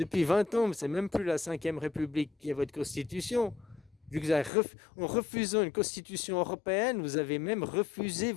20 ans, c'est même plus la 5e République qui est votre constitution. Vu que vous avez en refusant une constitution européenne, vous avez même refusé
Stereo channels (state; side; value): drops out; right; at 4.5 s